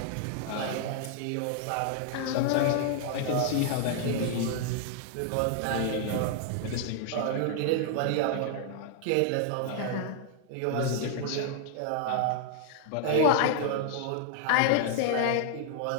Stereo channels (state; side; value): different; both; correlation 0.00